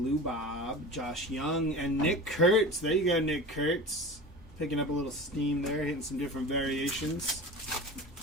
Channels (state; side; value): normal; both; correlation 0.33